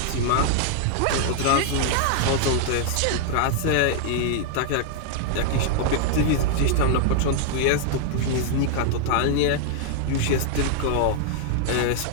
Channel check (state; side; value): different; both; correlation 0.00